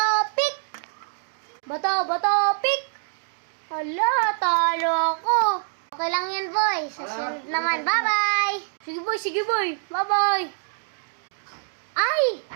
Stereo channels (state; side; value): silent; left; digital silence